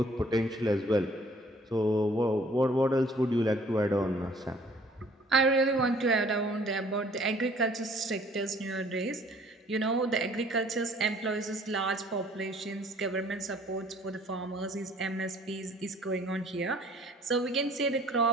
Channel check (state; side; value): normal; both; correlation 0.57